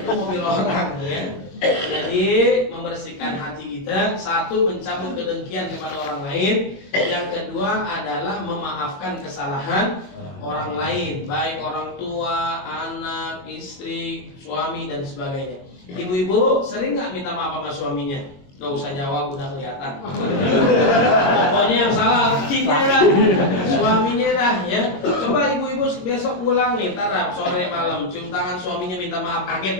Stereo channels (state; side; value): late; right; 22 ms